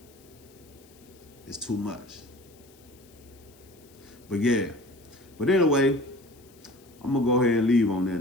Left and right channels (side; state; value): left; noise; hiss, 27 dB below the sound